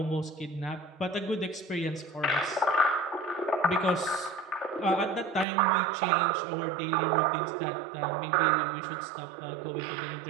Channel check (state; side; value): drops out; left; at 5.5 s